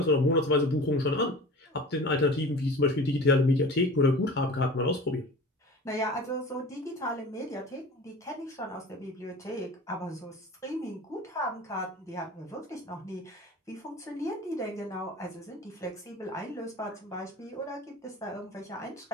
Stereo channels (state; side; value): normal; both; correlation 0.39